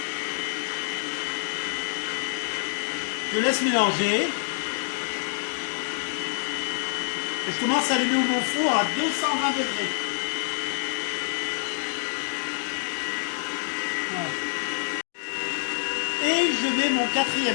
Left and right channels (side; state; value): right; silent; digital silence